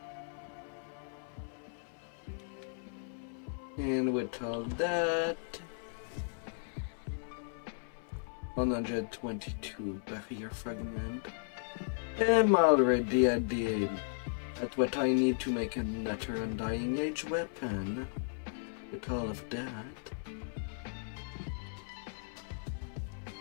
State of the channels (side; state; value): right; silent; 54 dB below the other